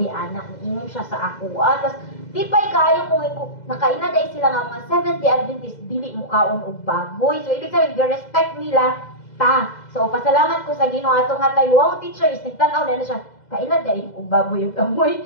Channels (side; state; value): right; late; 2.0 ms